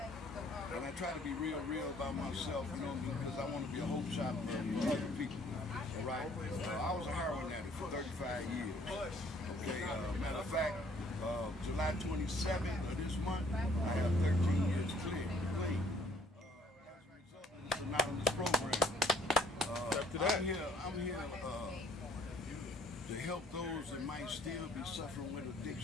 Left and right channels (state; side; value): normal; both; correlation 0.60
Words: And I try to be real about myself, you know, because I want to be a hope shot for other people. All right. I was a heroin addict for 35 years. Okay. Matter of fact, July 27th of this month, I have 13 years clean. As a result of this anonymous program. I'm here to help those that might still be suffering with